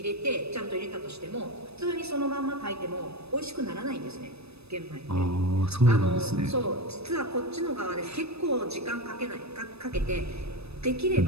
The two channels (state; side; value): late; left; 0.79 ms